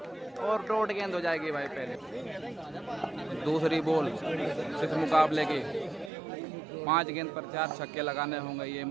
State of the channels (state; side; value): drops out; left; at 6.1 s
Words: और डॉट गेंद हो जाएगी भाई पहले। दूसरी बॉल इस मुकाबले की, 5 गेंद पर 4 छक्के लगाने होंगे ये